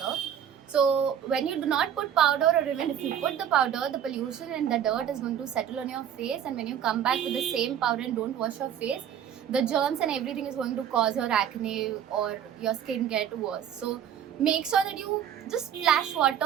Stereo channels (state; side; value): quieter; left; 9.4 dB